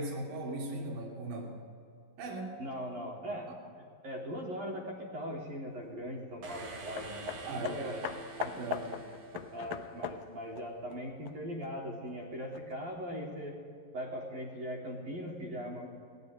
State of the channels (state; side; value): late; left; 11 ms